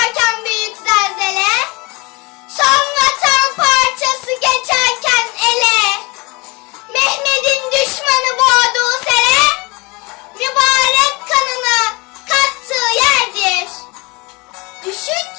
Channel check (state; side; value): quieter; right; 26.3 dB